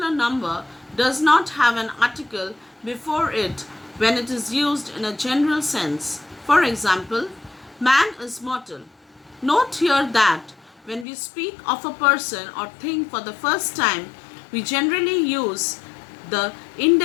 number does not have an article before it when it is used in a general sense. For example, man is mortal. Note here that when we speak of a person or thing for the first time, we generally use the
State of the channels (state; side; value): drops out; right; at 11.1 s